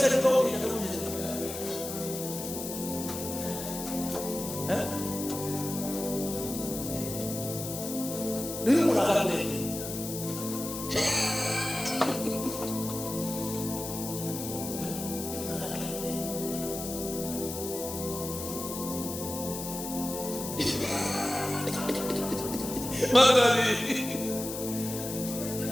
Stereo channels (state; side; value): noise; left; hiss, 7 dB below the sound